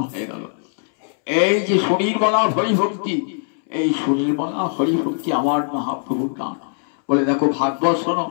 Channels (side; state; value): right; silent; 65 dB below the other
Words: হয়ে গেল। এই যে সুনির্মলা হরিভক্তি, এই সুনির্মলা হরিভক্তি আমার মহাপ্রভুর গান। বলে দেখো, ভাগবত শোনো,